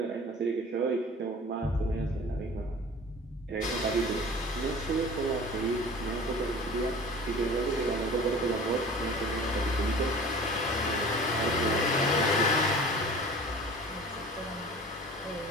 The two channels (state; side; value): normal; both; correlation 0.42